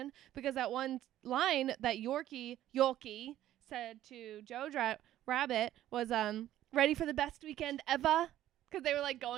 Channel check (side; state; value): left; quieter; 13.0 dB